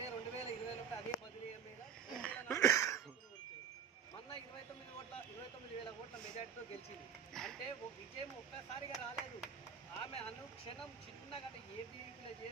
అదే 10,000 మీద మొన్న 29,000 ఓట్ల మెజార్టీతో గెలిచింది. అంటే విజయం ఒక్కసారిగా రాలేదు. ఆమె అనుక్షణం చిన్నగా అంటే ఏబీవీపీలో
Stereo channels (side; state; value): left; quieter; 7.3 dB